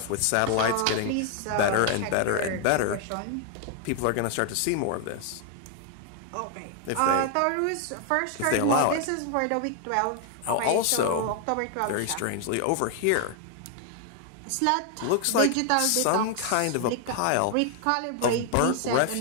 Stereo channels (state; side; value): different; both; correlation 0.00